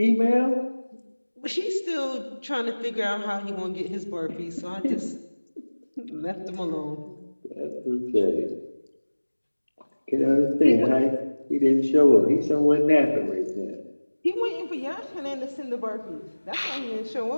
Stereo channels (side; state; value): both; inverted; correlation -1.00